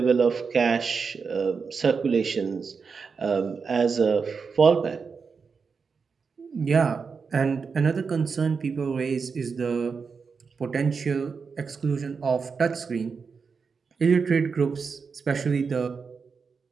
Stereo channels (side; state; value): left; quieter; 5.4 dB